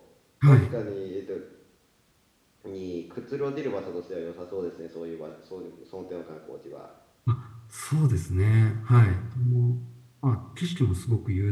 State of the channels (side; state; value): both; identical; correlation 1.00